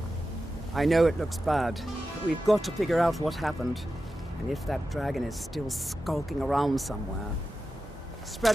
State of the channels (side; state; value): both; normal; correlation 0.92